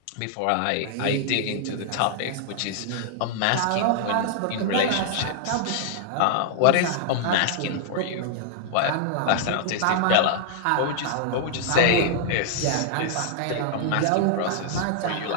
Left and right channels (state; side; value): different; both; correlation -0.01